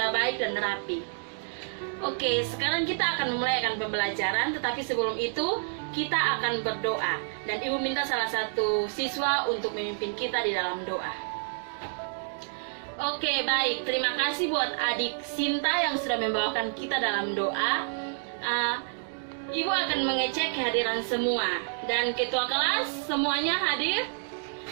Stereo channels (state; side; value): silent; left; digital silence